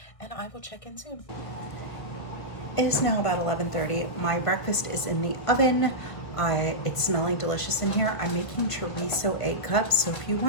And I will check in soon. It is now about 11:30. My breakfast is in the oven. It's smelling delicious in here. I'm making chorizo egg cups. So if you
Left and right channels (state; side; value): late; right; 1.5 ms